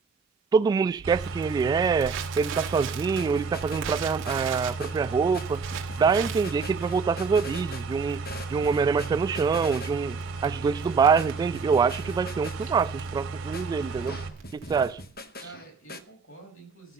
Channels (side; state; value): left; quieter; 5.1 dB